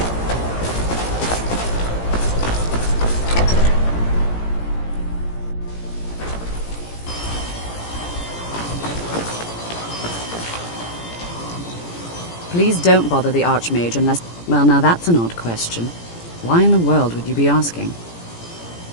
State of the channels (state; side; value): late; right; 17 ms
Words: Please don't bother the Archmage unless... Well, now that's an odd question. Why in the world would you be asking?